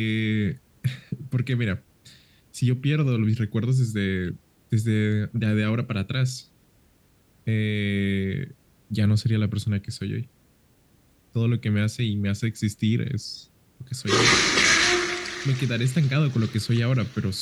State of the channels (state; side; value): identical; both; correlation 1.00